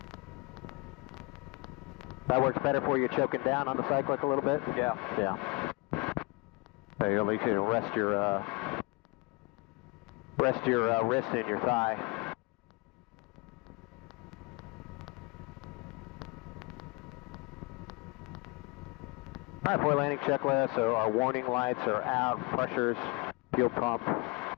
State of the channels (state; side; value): quieter; right; 28.1 dB